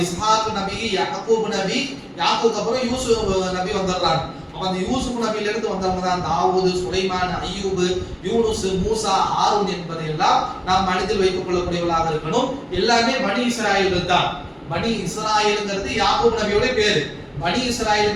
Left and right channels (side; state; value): both; identical; correlation 1.00